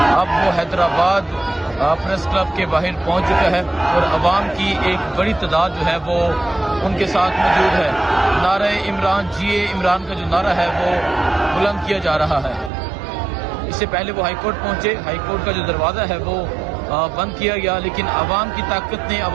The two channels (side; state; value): left; drops out; at 12.7 s